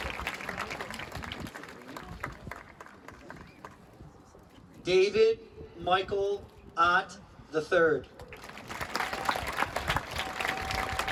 David Michael Ott III.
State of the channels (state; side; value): identical; both; correlation 1.00